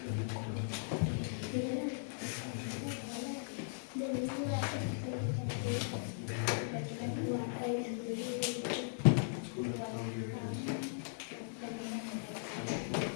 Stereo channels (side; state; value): right; silent; digital silence